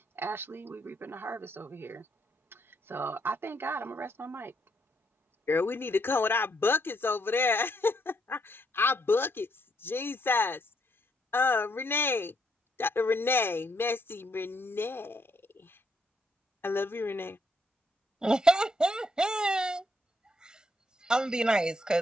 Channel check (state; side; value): normal; both; correlation 0.74